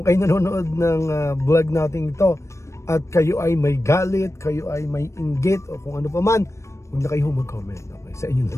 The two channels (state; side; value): late; right; 0.14 ms